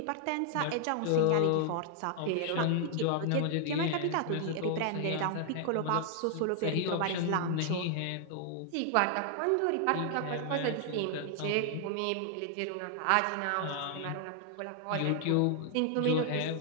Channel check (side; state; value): both; different; correlation 0.00